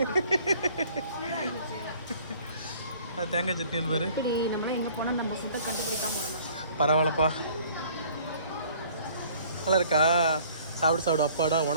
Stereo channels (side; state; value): both; inverted; correlation -0.54